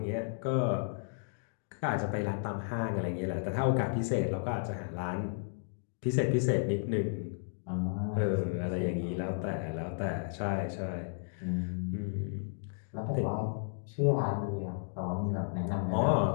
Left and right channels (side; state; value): right; silent; digital silence